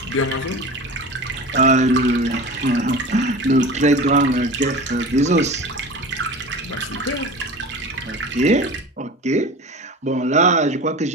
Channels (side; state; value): both; normal; correlation 0.33